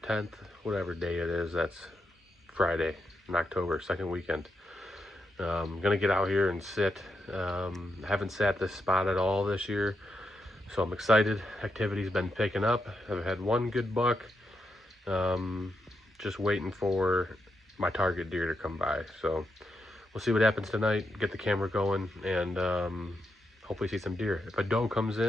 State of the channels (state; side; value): normal; both; correlation 0.84